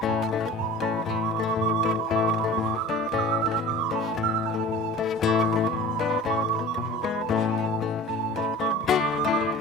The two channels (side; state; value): both; normal; correlation 0.41